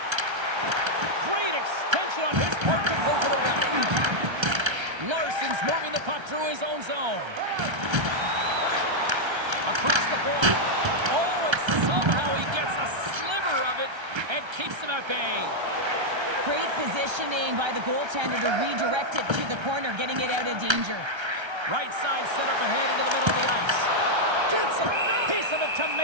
Great extension on his part to poke it away. Larson's moving the puck through his own zone. Across the point. Oh, and somehow he gets a sliver of it and keeps him at bay. Great positioning by the goaltender to redirect it to the corner, getting it out of danger. Right side set up ahead into the middle of the ice. Gets a piece of it to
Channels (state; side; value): late; left; 1.3 ms